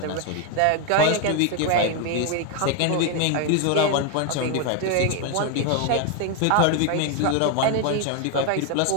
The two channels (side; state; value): both; different; correlation 0.01